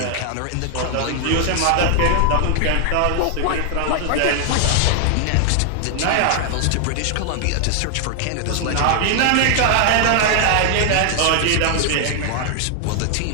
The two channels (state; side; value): different; both; correlation 0.00